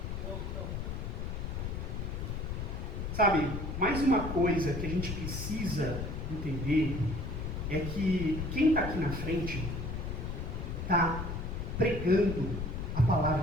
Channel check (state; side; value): noise; left; rumble, 4 dB below the sound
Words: Mais uma coisa que a gente precisa entender é que quem está aqui na frente está pregando a